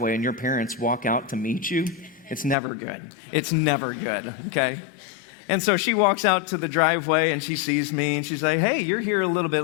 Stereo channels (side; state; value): right; drops out; at 2.6 s